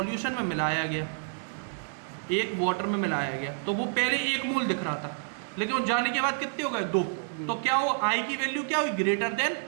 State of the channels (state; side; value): silent; left; digital silence